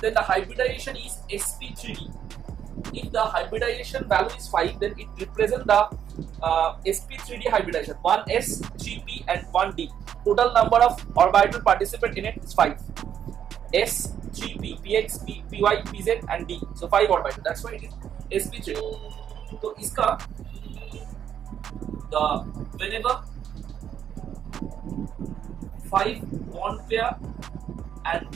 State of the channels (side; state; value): left; quieter; 9.2 dB